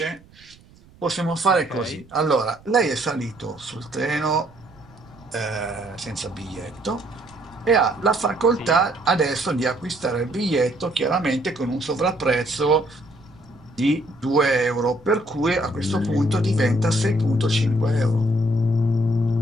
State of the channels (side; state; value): right; noise; rumble, 26 dB below the sound